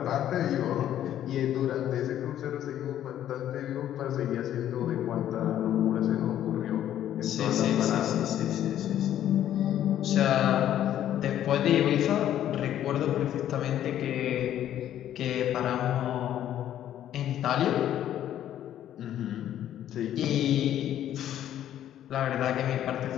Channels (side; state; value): right; quieter; 11.4 dB